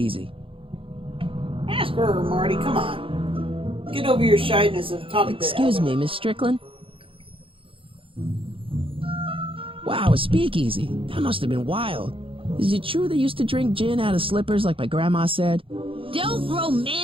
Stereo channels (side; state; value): left; late; 0.26 ms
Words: Ask her, Marty. Come on. Get over your shyness of talking to Excuse Elder. me, Miss Strickland? Wow, a speakeasy. That must have been wild. Is it true they used to drink gin out of slippers like my grandma said? Don't